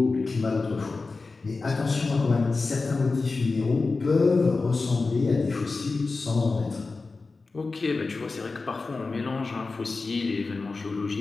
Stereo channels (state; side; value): quieter; right; 3.9 dB